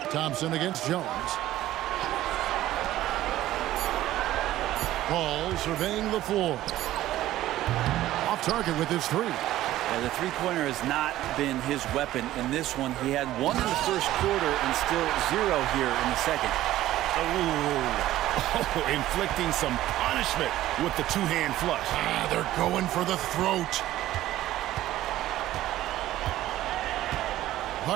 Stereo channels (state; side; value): quieter; left; 14.5 dB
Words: Thompson against Jones. Paul surveying the floor. Off target with his 3. The three-pointer has not been his weapon in this one. He had 1 in the first quarter and still 0 here in the second. Oh, inflicting some punishment with the 2-hand flush. They're going for the throat.